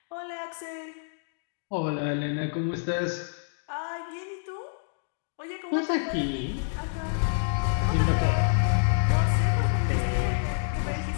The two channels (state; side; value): silent; right; digital silence